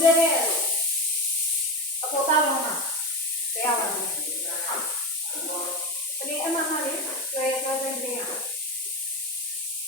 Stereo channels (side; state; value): both; normal; correlation 0.20